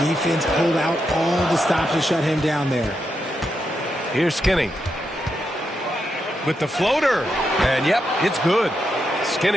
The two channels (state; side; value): normal; both; correlation 0.84